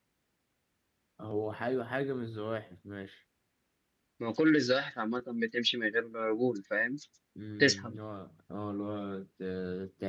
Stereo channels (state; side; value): identical; both; correlation 1.00